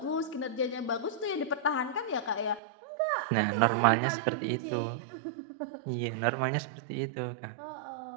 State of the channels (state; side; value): drops out; left; at 2.6 s